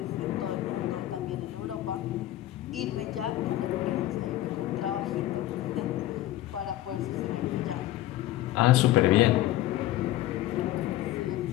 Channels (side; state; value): right; quieter; 14.7 dB